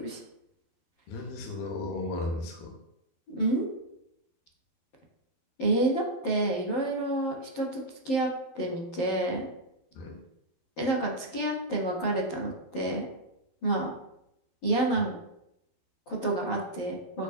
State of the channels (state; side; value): late; right; 11 ms